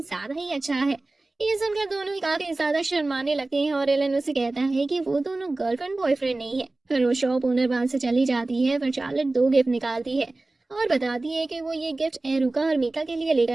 ही अच्छा है। ये सुनकर दोनों ही काफी ज्यादा शर्माने लगते हैं और एलन उसे कहता है कि वो दोनों गर्लफ्रेंड बॉयफ्रेंड नहीं है। फिर वो शॉप ओनर वहां से चली जाती है। फिर चार्लेट दो गिफ्ट निकालती है और बताती है कि वो ये गिफ्ट एरुका और मीका के लिए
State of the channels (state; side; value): quieter; left; 3.0 dB